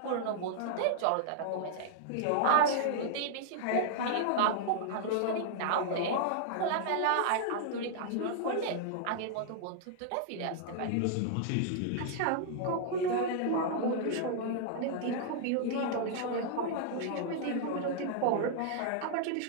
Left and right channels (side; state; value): both; different; correlation -0.01